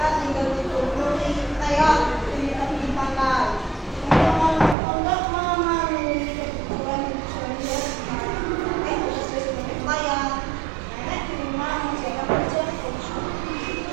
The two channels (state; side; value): drops out; left; at 4.8 s